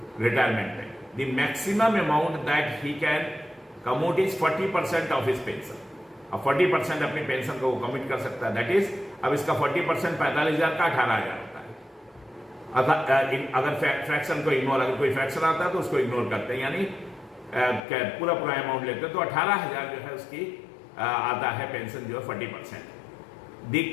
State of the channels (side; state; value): right; drops out; at 17.8 s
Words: रिटायरमेंट में। The maximum amount that he can commute is 40% of his pension. अब 40% अपनी पेंशन को वो कम्यूट कर सकता है, दैट इज अब इसका 40% 45,000 का 18,000 होता है। अगर फ्रैक्शन को इग्नोर, अगर कोई फ्रैक्शन आता है तो उसको इग्नोर करते हैं, यानी पूरा अमाउंट लेते हैं, तो 18,000 जो है उसकी आता है पेंशन जो है 40%। The